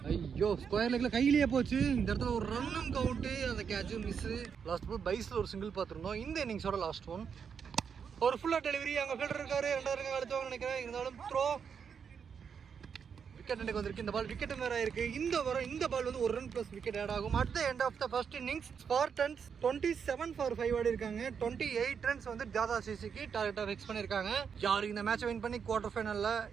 ஐயோ, ஸ்கொயர் லெக்கில் கையிலேயே போச்சு. இந்த இடத்துல ஒரு ரன்னும் கவுண்ட்டு. அந்த கேட்சும் மிஸ்ஸு. லாஸ்ட் பால் பைஸில் ஒரு சிங்கிள் பார்த்துருந்தோம். இந்த இன்னிங்ஸோட லாஸ்ட் ஒன். ஒரு ஃபுல்லாக டெலிவரி. அங்கே ஃபீல்டர் இருக்காரு. 2 அழுத்துவாங்க நினைக்கிறேன். இருந்தாலும் த்ரோ. விக்கெட் எனக்கு வந்திருக்கு. இந்த பால் விக்கெட் வேற இருக்கு. இந்த பால் வந்து ஒரு ரன் பிளஸ் விக்கெட் ஆட் ஆகும். At the end of the first innings Spartans 27 for 5 ஆடி இருக்காங்க. 28 ரன்ஸ் வந்து ஜாதா சிசிக்கு டார்கெட்டா ஃபிக்ஸ் பண்ணிருக்காங்க. யாரு இந்த மேட்சை வின் பண்ணி குவார்டர் ஃபைனல்ல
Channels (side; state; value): left; quieter; 6.8 dB